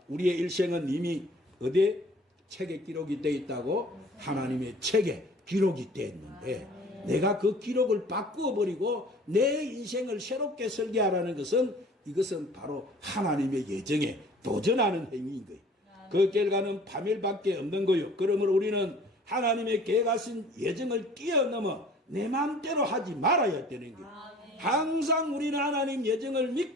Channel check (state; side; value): normal; both; correlation 0.50